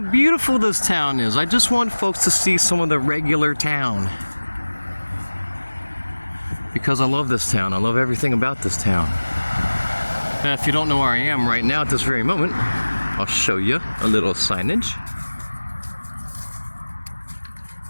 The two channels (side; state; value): both; inverted; correlation -1.00